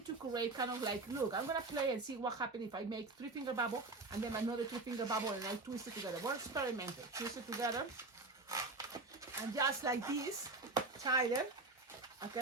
to create kind of like, look, I'm gonna play and see what happens if I make 3-finger bubble and then another 2-finger bubble, and I twist it together. We're experimenting. Twist it together. And just like this, tie it.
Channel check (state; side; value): quieter; left; 3.4 dB